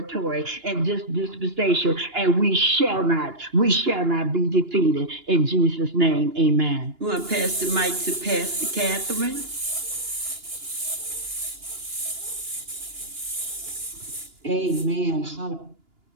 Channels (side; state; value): left; late; 2.9 ms